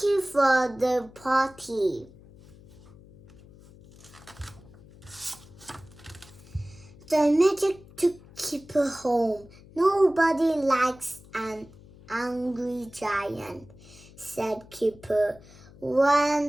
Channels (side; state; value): left; noise; hum, 22 dB below the sound